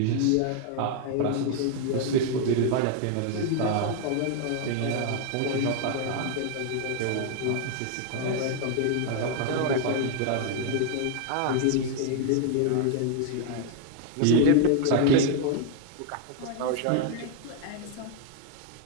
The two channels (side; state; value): both; different; correlation 0.00